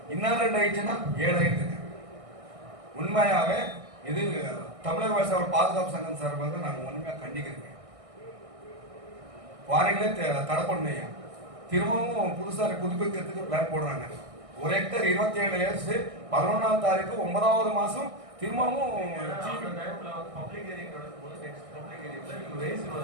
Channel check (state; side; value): late; left; 1.6 ms